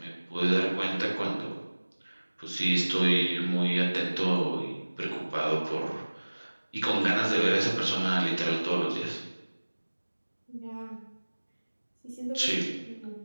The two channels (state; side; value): inverted; both; correlation -1.00